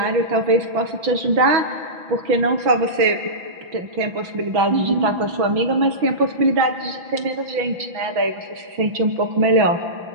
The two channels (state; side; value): late; left; 6.3 ms